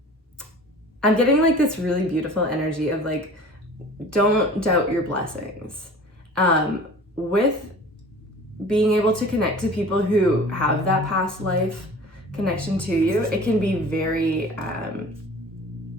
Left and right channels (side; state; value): both; normal; correlation 0.43